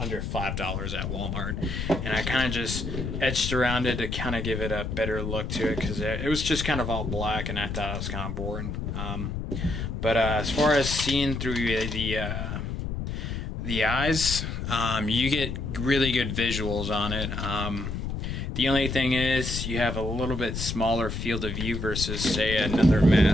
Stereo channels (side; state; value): left; noise; rumble, 4 dB below the sound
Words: $5 at Walmart, and I kind of just etched around it to kind of give it a better look to it, because it was just kind of all black and I thought it was kind of boring. But as far as seeing through the eyes, you get really good visuals on it. The only thing is you have a little bit smaller field of view versus, say, another